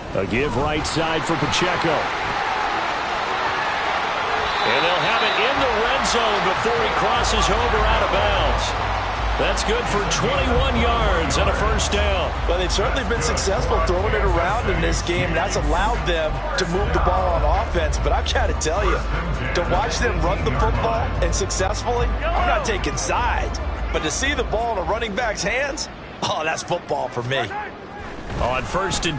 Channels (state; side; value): identical; both; correlation 1.00